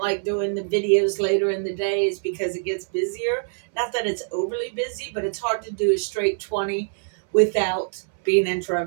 like doing the videos later in the day, is because it gets busier. Not that it's overly busy, but it's hard to do a straight 20 without being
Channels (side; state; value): left; silent; 63 dB below the other